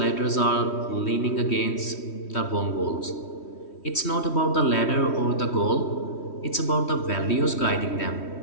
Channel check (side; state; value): right; late; 3.1 ms